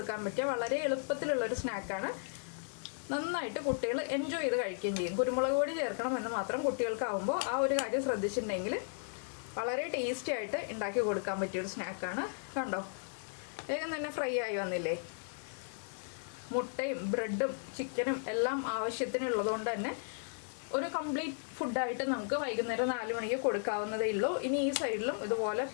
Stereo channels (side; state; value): right; silent; digital silence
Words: പറ്റിയ വളരെ എളുപ്പത്തിലുള്ളൊരു സ്നാക്കാണ്. നന്നായിട്ട് കുട്ടികൾ എൻജോയ് ചെയ്ത് കഴിക്കുകയും ചെയ്യും. കുരുമുളക് പൊടി ചേർക്കണം എന്ന് മാത്രം കുട്ടികൾക്കാവുമ്പോൾ ആ ഒരു കാര്യം ശ്രദ്ധിച്ചിട്ടുണ്ടെങ്കിൽ വളരെ ടേസ്റ്റി ആയിട്ട് ഉണ്ടാക്കി കൊടുക്കാൻ പറ്റിയൊരു സ്നാക്കാണ്. കണ്ടോ, വേഗം തന്നെ ഫ്രൈ ആയി വന്നില്ലേ. മുട്ടയും ബ്രെഡും ചിക്കനും എല്ലാം ആവശ്യത്തിനുള്ളതുകൊണ്ട് തന്നെ ഒരു കംപ്ലീറ്റ് ഫുഡായിട്ട് നമുക്ക് വൈകുന്നേരം 4 മണിക്ക് കൊടുക്കാവുന്നതേ ഉള്ളൂ. ഇനി ഈ സൈഡിലും ഇതുപോലെ